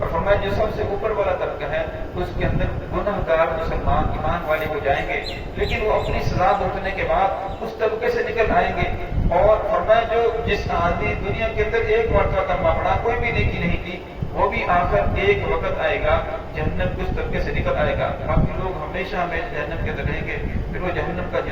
فرمایا جو سب سے اوپر والا طبقہ ہے اس کے اندر گناہ گار مسلمان ایمان والے ہو جائیں گے، لیکن وہ اپنی سزا بھگتنے کے بعد اس طبقے سے نکل آئیں گے۔ اور فرمایا جس آدمی دنیا کے اندر ایک مرتبہ کلمہ پڑھا، کوئی بھی نیکی نہیں کی، وہ بھی آخر ایک وقت آئے گا جہنم کے اس طبقے سے نکل آئے گا، باقی لوگ ہمیشہ ہمیشہ جہنم کے اندر رہیں گے۔ پھر وہ جہنم کا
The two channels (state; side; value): identical; both; correlation 1.00